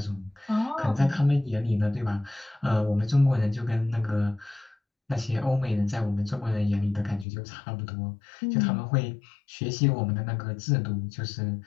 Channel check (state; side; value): drops out; right; at 7.2 s